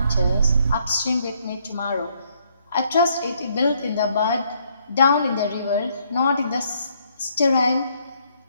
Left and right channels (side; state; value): both; inverted; correlation -0.70